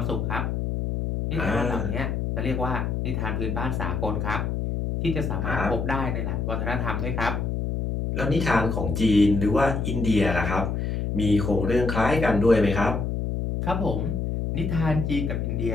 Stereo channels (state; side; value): noise; left; hum, 1 dB below the sound